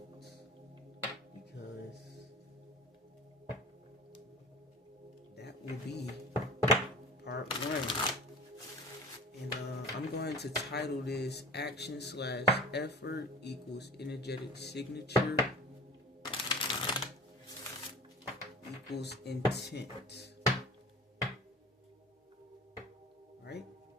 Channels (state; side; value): normal; both; correlation 0.40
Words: Because that will be part one. And I'm going to title this Action/Effort equals Energetic Signature equals Intent. Right?